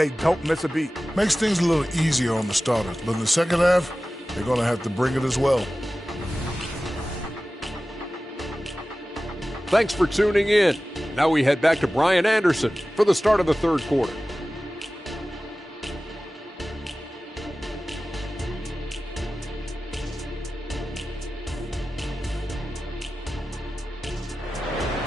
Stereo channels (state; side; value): normal; both; correlation 0.96